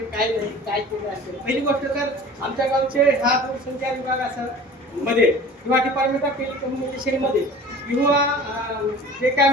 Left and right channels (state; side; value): normal; both; correlation 0.42